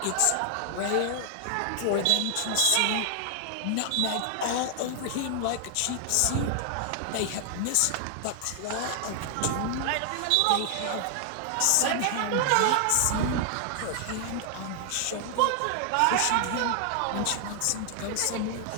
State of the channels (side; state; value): both; different; correlation 0.00